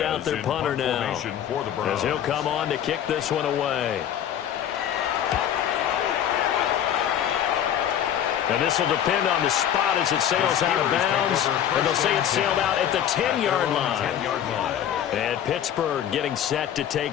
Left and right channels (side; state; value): right; quieter; 10.1 dB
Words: out their punter now, as he'll come on to kick this one away. And this will depend on the spot as it sails out of bounds. And they'll say it sailed out at the 10-yard line. And Pittsburgh getting set to